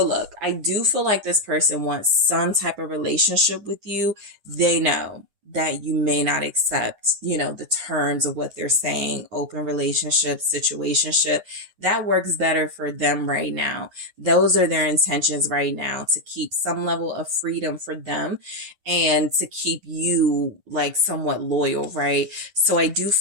look, I do feel like this person wants some type of relationship with you. They know that you may not accept, you know, the terms of what they're saying, open relationship, situationship. That works better for them right now. Those are their intentions right now, to keep some level of freedom for them and to keep you like somewhat loyal, right? So I do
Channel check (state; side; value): late; left; 9.6 ms